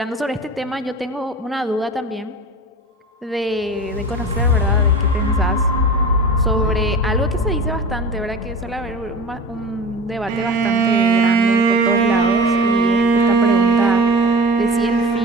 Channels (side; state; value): both; normal; correlation 0.35